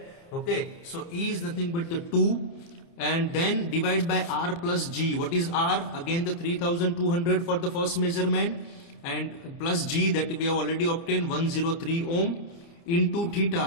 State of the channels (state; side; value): late; right; 29 ms